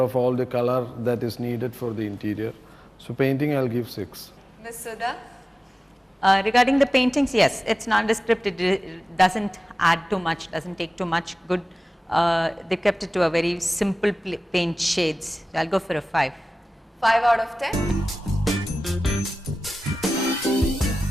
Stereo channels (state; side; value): normal; both; correlation 0.96